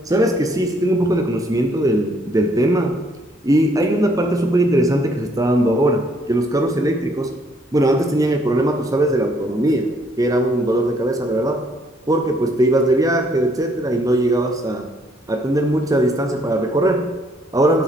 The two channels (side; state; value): both; normal; correlation 0.66